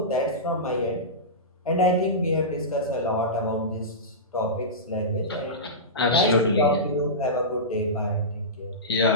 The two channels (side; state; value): both; normal; correlation -0.17